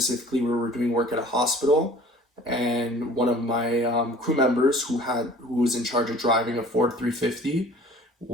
we were doing work at a hospital, and one of my crew members who was in charge of driving a Ford 350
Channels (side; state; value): both; normal; correlation 0.48